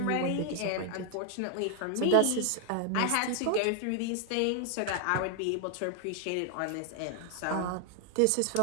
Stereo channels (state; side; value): different; both; correlation 0.00